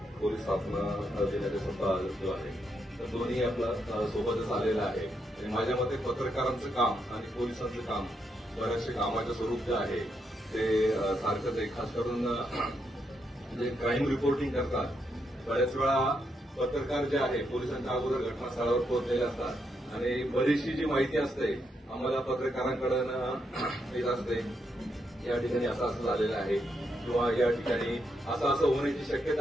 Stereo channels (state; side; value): normal; both; correlation 0.80